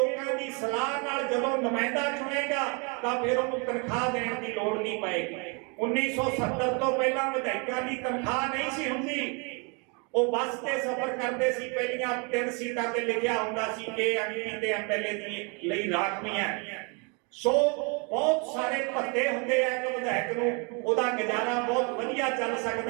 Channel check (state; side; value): quieter; left; 33.5 dB